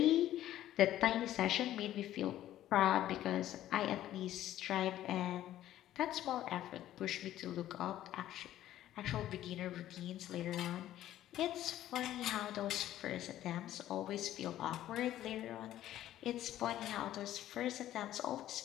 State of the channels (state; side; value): quieter; right; 13.0 dB